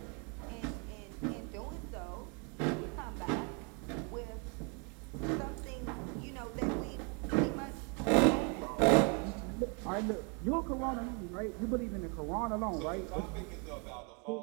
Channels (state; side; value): quieter; left; 35.3 dB